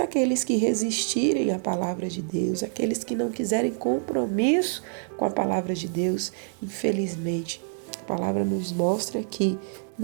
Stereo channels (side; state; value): left; silent; 61 dB below the other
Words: que resistirem à palavra de Deus, aqueles que não quiserem compromisso com a palavra de Deus, infelizmente, a palavra nos mostra que,